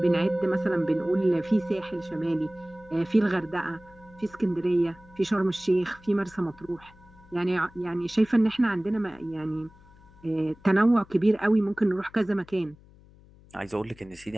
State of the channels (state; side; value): noise; left; hum, 25 dB below the sound